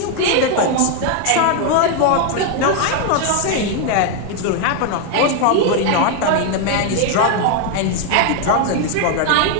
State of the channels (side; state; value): both; different; correlation 0.01